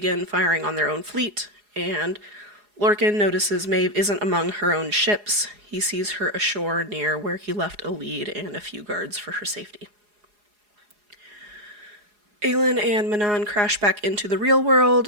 firing on their own fleet, and Lorcan notices Maeve isn't among her own ships. He sees her ashore near where he left a lead and a few guards for her safety. Aelin and Manon crash back into the real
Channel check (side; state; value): left; late; 4.8 ms